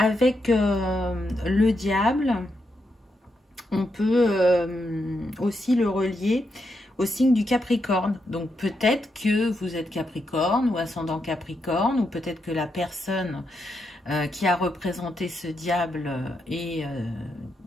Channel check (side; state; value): both; normal; correlation 0.82